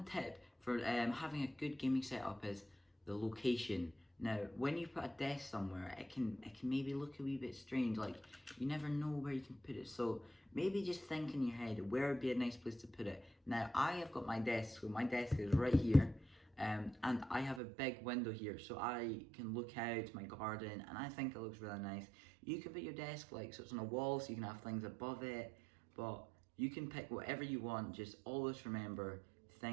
tip for having a good gaming setup is the location. Now, when you put a desk somewhere, it can maybe look a wee bit strange. Like you never know where you can put it. So maybe just think in your head where would be a nice place to put it. Now, I have got my desk. So my desk is right here. And I have a big window here, so I can look out to my garden, and I think it looks really nice. You can put your desk like so it's on a wall, so you can have things above it, but you can pick whatever you want. Just always remember,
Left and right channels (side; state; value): left; drops out; at 17.6 s